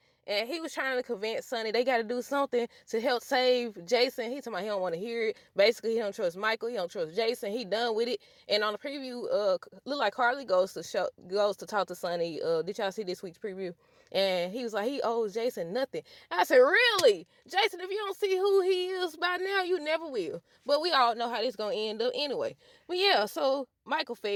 and he was trying to convince Sonny they got to do something to help save Jason. He talking about he don't want to hear it. Basically, he don't trust Michael. He don't trust Jason. He done with it. And on the preview, look like Carly goes to talk to Sonny. Did y'all see this week's preview? And he was like, he owes Jason nothing. I said, really? Jason, if you don't see who he is by now, you never will. But we all know how this going to end up anyway. But yeah, so Michael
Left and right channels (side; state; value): both; identical; correlation 1.00